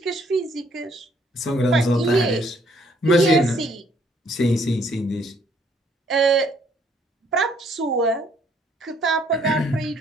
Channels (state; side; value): normal; both; correlation 0.65